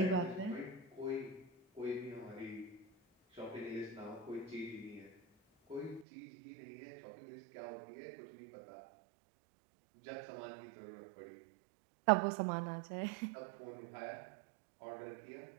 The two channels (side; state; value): left; drops out; at 6.1 s